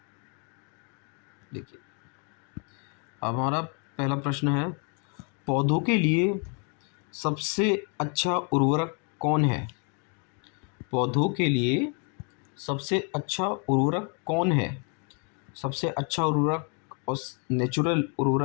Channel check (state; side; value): quieter; right; 38.2 dB